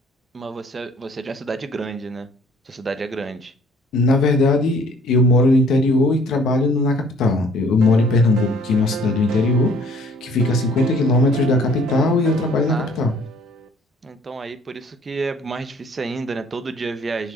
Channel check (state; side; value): normal; both; correlation 0.57